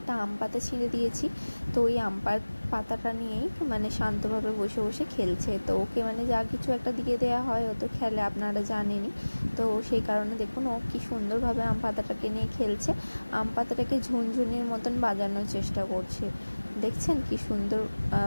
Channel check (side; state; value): both; inverted; correlation -1.00